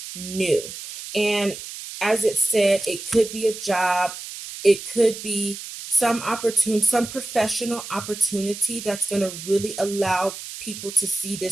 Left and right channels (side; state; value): right; noise; hiss, 11 dB below the sound